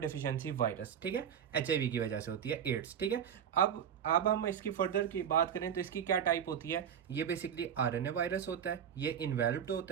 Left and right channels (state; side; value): quieter; left; 8.6 dB